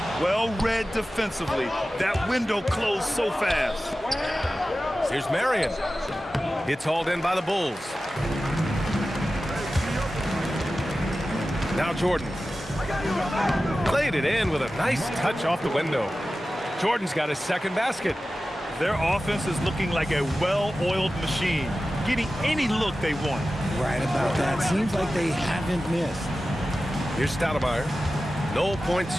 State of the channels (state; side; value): normal; both; correlation 0.94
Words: Well read defensively. That window closed so fast. Here's Marion. It's hauled in by the Bulls. Now Jordan. Played it in with a nice touch off the window. Jordan's got his second basket. Their offense is looking like a well-oiled machine, getting any look they want. Right about that. Seems like they haven't missed. Here's Stoudemire. No points